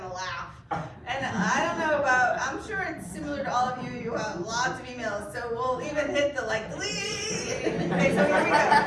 laugh. And I don't know I'm sure it's similar to all of you. You have lots of emails, so we'll even hit the like delete. Okay, so here we go.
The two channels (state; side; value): identical; both; correlation 1.00